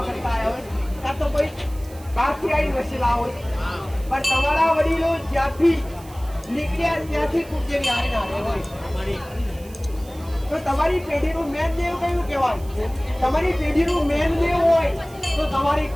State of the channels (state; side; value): noise; right; hiss, 22 dB below the sound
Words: હોય કાં તો કોઈ બહારથી આવી વસેલા હોય પણ તમારા વડીલો જ્યાંથી નીકળ્યા ત્યાંથી કુળદેવી આવીને હોય તો તમારી પેઢીનું મેન દેવ કયું કહેવાય તમારી પેઢીનું મેન દેવ હોય તો તમારી